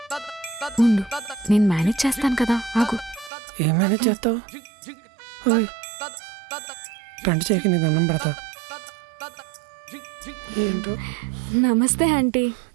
ఉండు, నేను మేనేజ్ చేస్తాను కదా, ఆగు. ఏమైనా చేస్తావు? గంట చేయక నీ దండం పెడతా. ఏంటో. నమస్తే ఆంటీ.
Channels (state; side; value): drops out; left; at 3.3 s